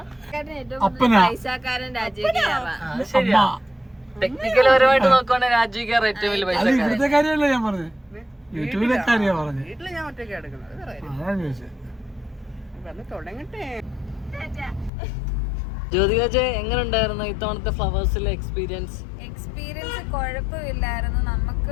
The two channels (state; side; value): drops out; right; at 14.9 s